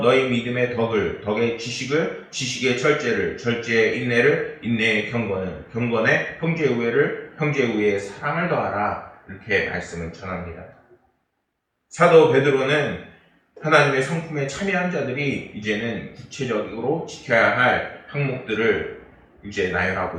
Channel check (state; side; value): identical; both; correlation 1.00